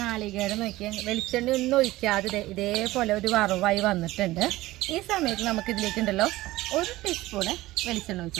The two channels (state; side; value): quieter; left; 17.8 dB